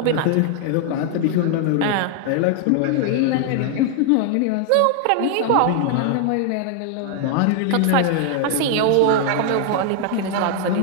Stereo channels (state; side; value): different; both; correlation 0.00